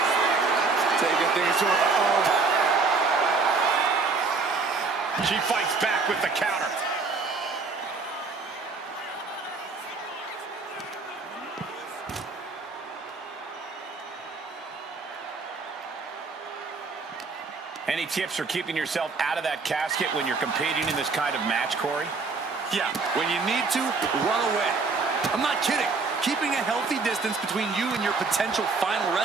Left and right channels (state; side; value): quieter; left; 4.3 dB